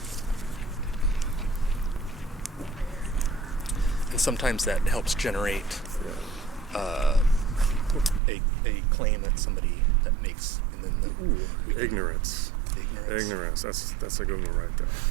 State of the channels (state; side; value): drops out; left; at 8.2 s